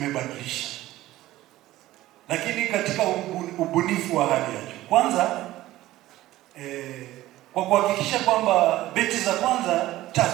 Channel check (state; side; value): quieter; left; 15.8 dB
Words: lakini katika ubunifu wa hali ya juu. Kwanza kwa kuhakikisha kwamba beti za kwanza